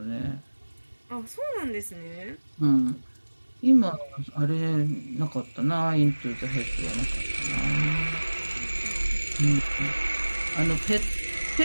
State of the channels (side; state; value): both; inverted; correlation -1.00